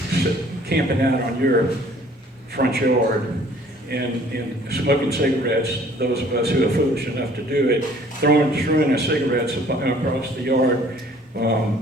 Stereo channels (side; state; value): both; normal; correlation 0.55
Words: camping out on your front yard and smoking cigarettes, those of us who are foolish enough to do it, throwing our cigarettes across the yard,